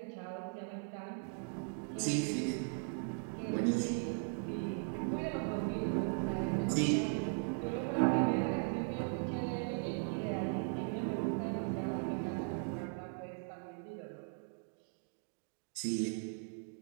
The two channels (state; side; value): silent; left; 52 dB below the other